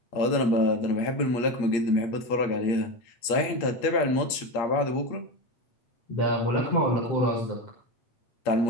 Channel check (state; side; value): late; right; 8.5 ms